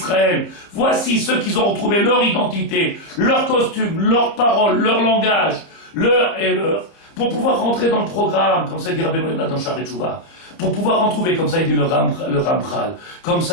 voici ceux qui ont retrouvé leur identité, leur costume, leurs paroles, leur langage, leur et leur, pour pouvoir rentrer dans le programme, comme ça dit Rabbeinu Yonah dans Sha'arei Teshuvah, pour pouvoir en trouver, comme ça il dit le Ramchal, comme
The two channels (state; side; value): late; right; 30 ms